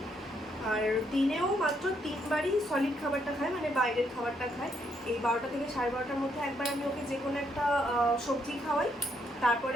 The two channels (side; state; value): both; normal; correlation 0.74